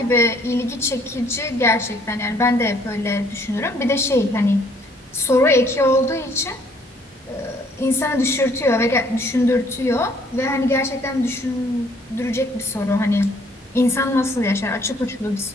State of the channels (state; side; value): normal; both; correlation 0.62